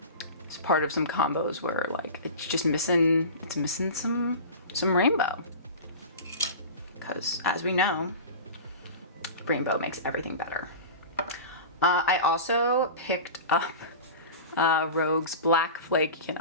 It's part of some combos where like it's missing some rainbow. Because as we know, rainbow makes everything better. I also picked up Rogue's Black Flake. You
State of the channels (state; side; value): inverted; both; correlation -0.32